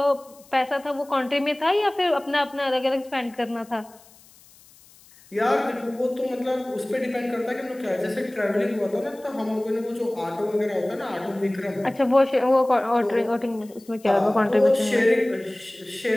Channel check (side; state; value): left; noise; hiss, 26 dB below the sound